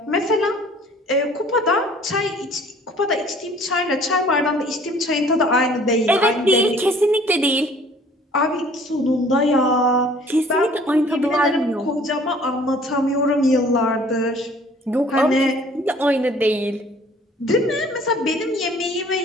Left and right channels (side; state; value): both; normal; correlation 0.53